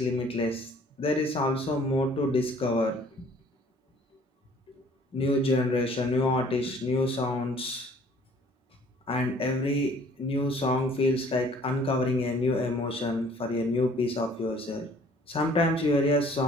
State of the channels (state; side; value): normal; both; correlation 0.56